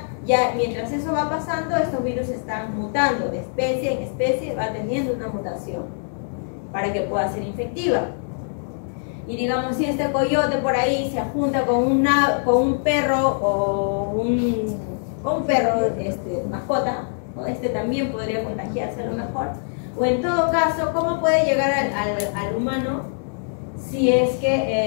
Ya mientras eso va pasando, estos virus están mutando de especie en especie, va teniendo una mutación para que pueda ser infectiva. Y digamos, si este coyote por ahí se junta con un perro o un perro mascota, ¿no? También podría contagiarse a lo mejor. O en todo caso, ¿cómo puede llegar al humano si es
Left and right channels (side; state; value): right; silent; digital silence